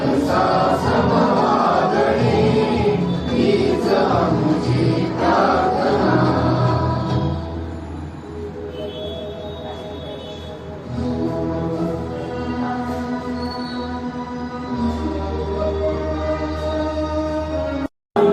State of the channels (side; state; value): both; identical; correlation 1.00